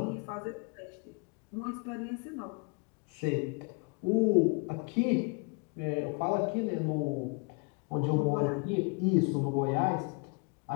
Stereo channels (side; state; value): right; quieter; 33.8 dB